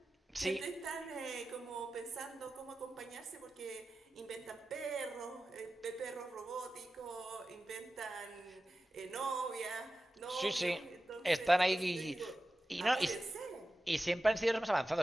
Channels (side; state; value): both; normal; correlation 0.94